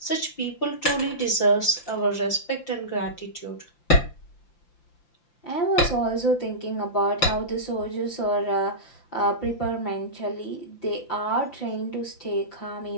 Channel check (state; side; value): late; right; 5.8 ms